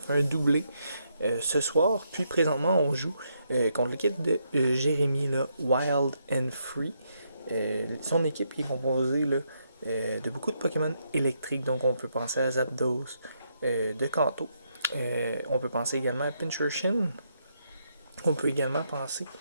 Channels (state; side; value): inverted; both; correlation -0.77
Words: un doublé ce soir. Puis, présentement, on joue contre l'équipe de Jérémy, là, Wild and Free. Son équipe est composée là, de beaucoup de Pokémon électriques, donc on peut penser à Zapdos de Kanto. On peut penser également à Pincurchin. On peut également penser